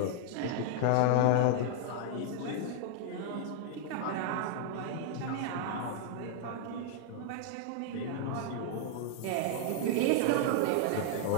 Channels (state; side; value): different; both; correlation -0.01